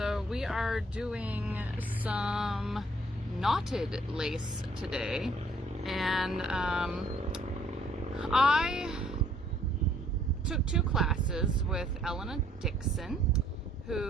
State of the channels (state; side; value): normal; both; correlation 0.63